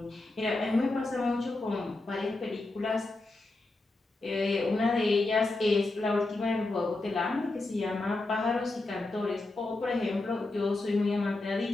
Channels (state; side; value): quieter; right; 3.0 dB